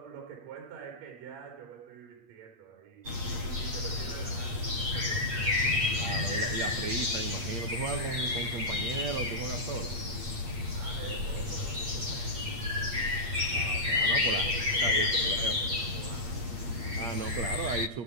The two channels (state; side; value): late; left; 8.6 ms